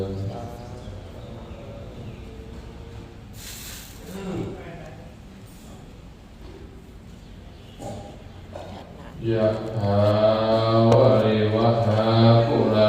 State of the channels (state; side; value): identical; both; correlation 1.00